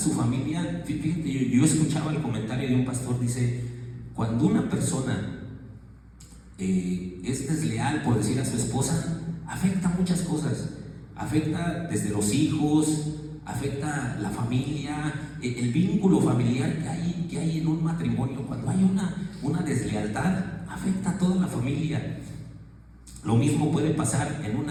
familia, fíjate, yo escuchaba el comentario de un pastor, dice: cuando una persona es desleal, por decir, a su esposa, afecta muchas cosas. Afecta desde los hijos, afecta la familia, el vínculo familiar que hay en un matrimonio. Cuando hay una deslealtad, afecta a toda la familia. Lo mismo puede pasar en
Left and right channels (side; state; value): both; identical; correlation 1.00